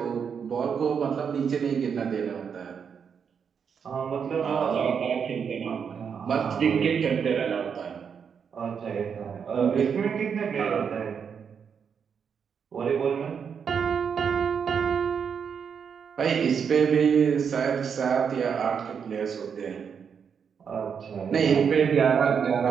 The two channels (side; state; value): left; quieter; 6.9 dB